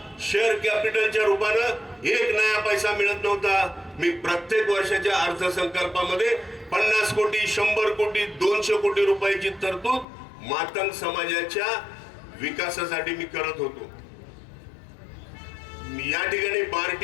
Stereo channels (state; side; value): drops out; right; at 10.1 s